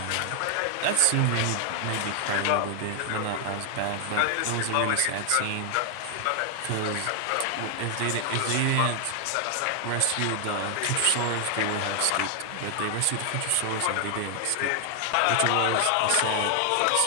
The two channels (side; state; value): both; different; correlation 0.00